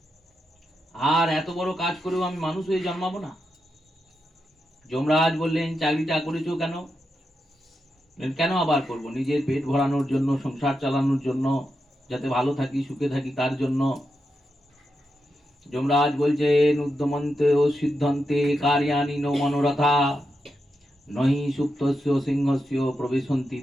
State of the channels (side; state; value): both; normal; correlation 0.86